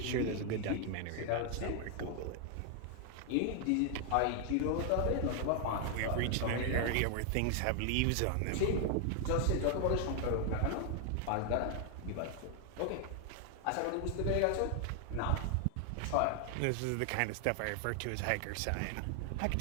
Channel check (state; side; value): different; both; correlation 0.00